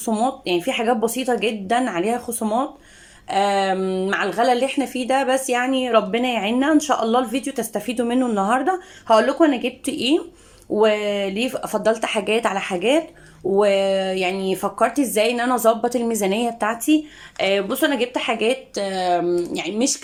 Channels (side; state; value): both; identical; correlation 1.00